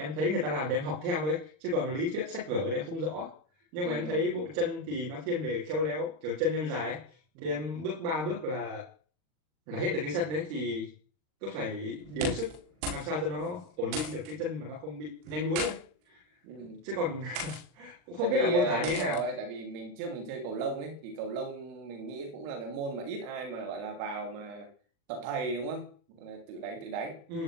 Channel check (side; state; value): left; late; 39 ms